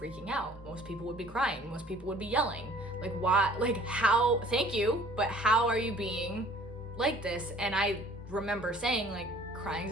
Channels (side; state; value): both; normal; correlation 0.53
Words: out. Most people would be crying. Most people would be yelling. Why? How? Thank you, but how are you being like this? And I remember saying,